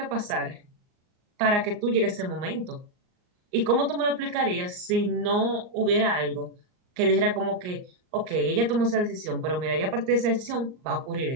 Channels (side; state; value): left; late; 39 ms